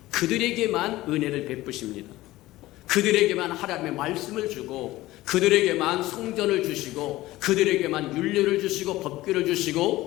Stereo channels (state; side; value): quieter; right; 17.3 dB